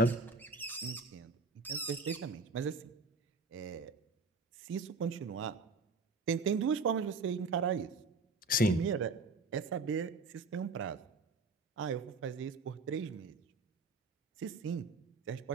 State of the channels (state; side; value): quieter; left; 3.7 dB